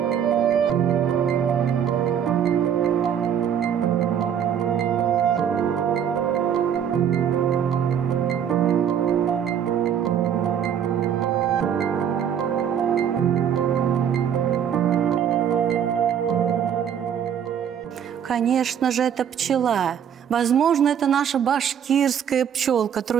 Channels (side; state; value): left; quieter; 8.6 dB